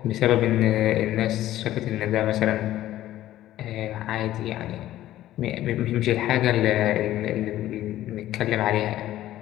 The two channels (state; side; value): quieter; right; 13.9 dB